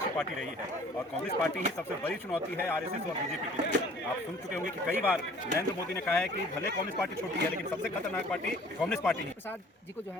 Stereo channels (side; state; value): both; normal; correlation 0.51